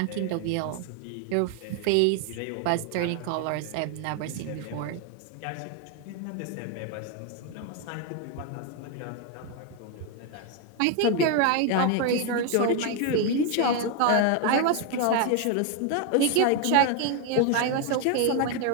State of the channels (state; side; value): different; both; correlation 0.01